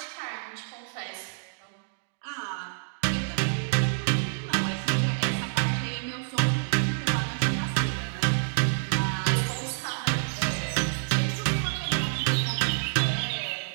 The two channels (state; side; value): silent; left; digital silence